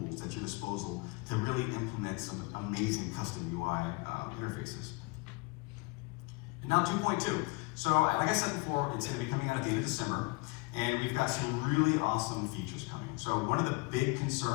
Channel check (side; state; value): right; quieter; 26.5 dB